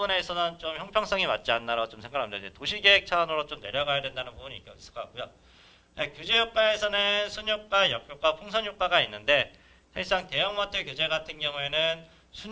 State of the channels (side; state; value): both; identical; correlation 1.00